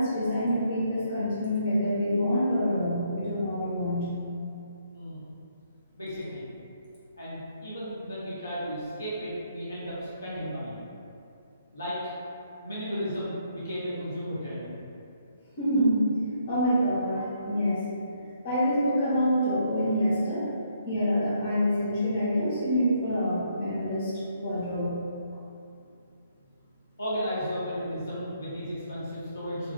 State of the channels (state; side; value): inverted; both; correlation -0.72